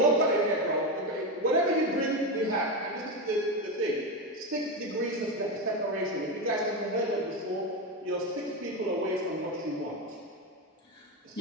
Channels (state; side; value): normal; both; correlation 0.14